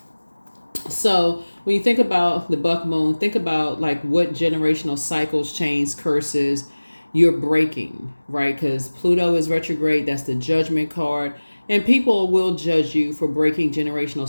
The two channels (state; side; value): inverted; both; correlation -1.00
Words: So when you think about the buck moon, think about like what generational cycles, chains, curses you're breaking, right? Because Pluto is retrograde. That's the judgment card. And people will judge you for breaking generational